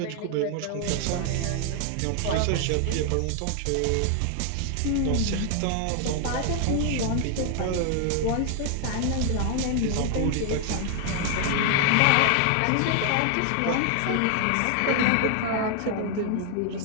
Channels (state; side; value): different; both; correlation 0.00